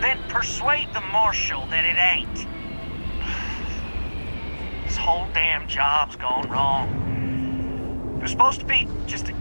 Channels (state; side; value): inverted; both; correlation -1.00